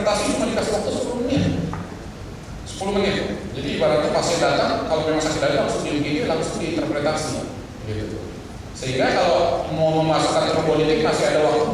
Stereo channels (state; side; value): identical; both; correlation 1.00